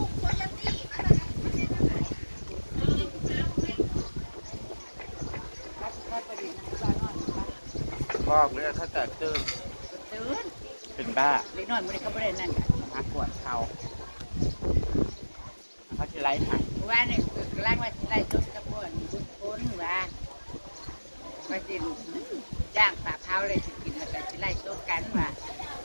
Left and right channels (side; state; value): both; inverted; correlation -1.00